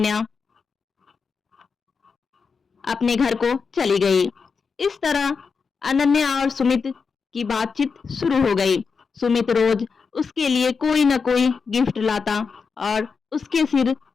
अपने घर को चली गई। इस तरह अनन्या और सुमित की बातचीत शुरू हो गई। सुमित रोज उसके लिए कोई न कोई गिफ्ट लाता और उसके सिर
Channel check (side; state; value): right; quieter; 5.3 dB